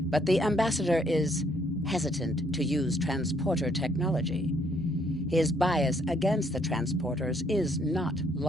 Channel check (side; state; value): both; normal; correlation 0.68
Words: but the ambassador is hesitant to use transporter technology. His bias against the transporters is not